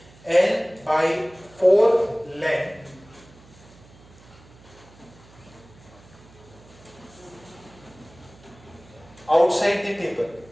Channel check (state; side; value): noise; right; hum, 24 dB below the sound